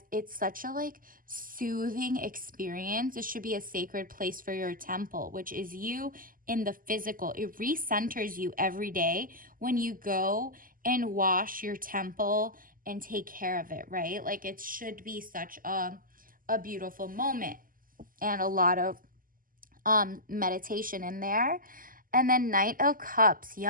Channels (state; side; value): late; left; 0.41 ms